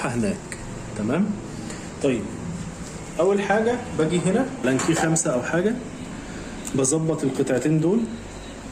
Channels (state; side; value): identical; both; correlation 1.00